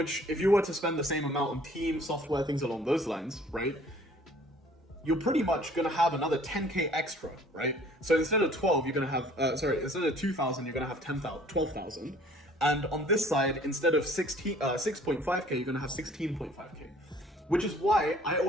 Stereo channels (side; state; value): both; normal; correlation 0.54